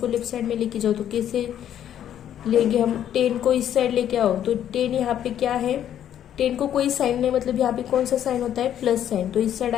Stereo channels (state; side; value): quieter; right; 10.4 dB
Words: लेफ्ट साइड में लेके जाओ, तो कैसे लेंगे हम? 10 को इस साइड लेके आओ, तो 10 यहाँ पे क्या है, 10 को कोई साइन नहीं, मतलब यहाँ पे कौन सा साइन होता है, प्लस साइन, तो इस साइड